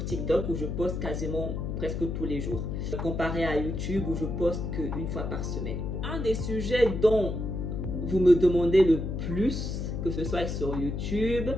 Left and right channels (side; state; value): left; noise; hum, 3 dB below the sound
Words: TikTok où je poste quasiment presque tous les jours. Comparé à YouTube où je poste qu'une fois par semaine. Un des sujets dont vous me demandez le plus, que ce soit sur YouTube,